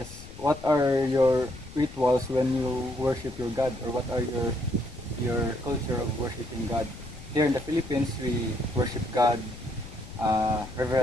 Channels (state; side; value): noise; left; rumble, 15 dB below the sound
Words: what are your rituals when you worship your God, or what are your culture of worshiping God? Here in the Philippines, we worship God